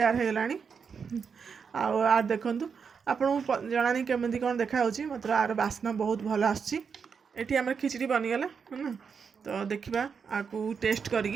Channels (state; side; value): quieter; left; 6.1 dB